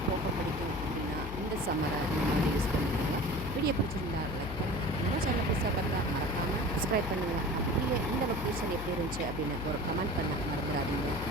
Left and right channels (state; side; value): noise; left; hum, 7 dB below the sound